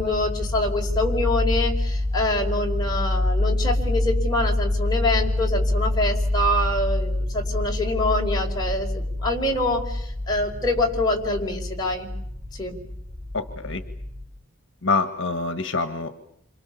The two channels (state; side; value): normal; both; correlation 0.48